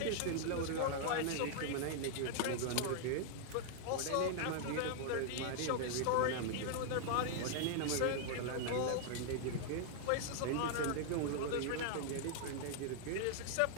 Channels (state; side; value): different; both; correlation -0.01